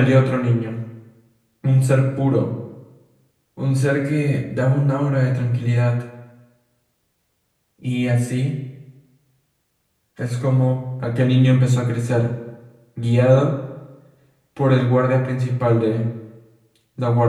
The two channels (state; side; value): identical; both; correlation 1.00